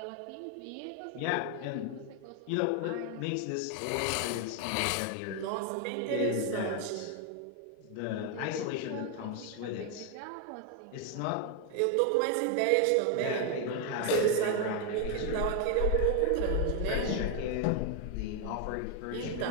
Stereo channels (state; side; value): different; both; correlation 0.01